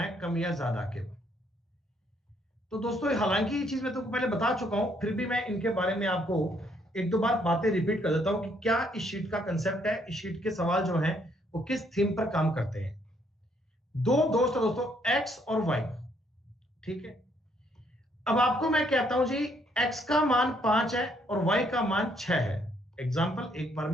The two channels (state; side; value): normal; both; correlation 0.69